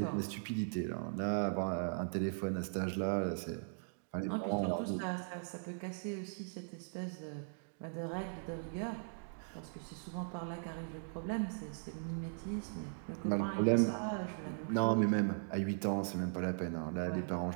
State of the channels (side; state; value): left; silent; digital silence